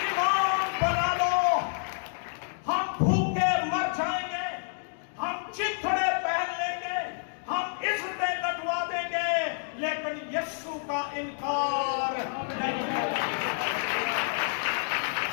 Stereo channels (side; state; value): right; silent; digital silence